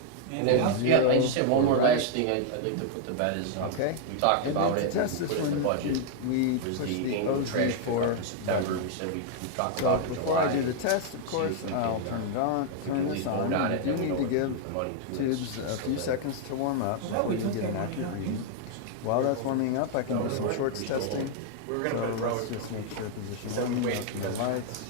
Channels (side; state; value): both; different; correlation 0.00